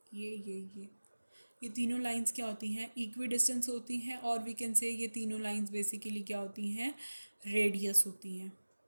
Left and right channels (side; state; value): both; inverted; correlation -1.00